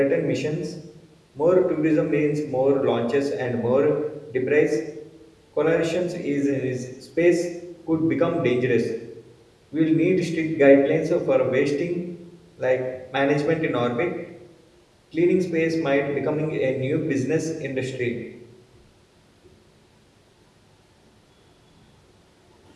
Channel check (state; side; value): identical; both; correlation 1.00